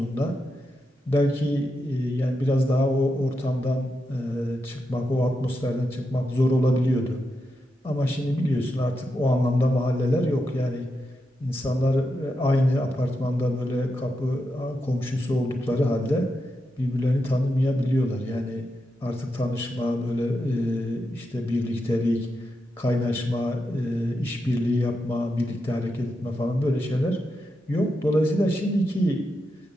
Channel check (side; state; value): both; normal; correlation 0.86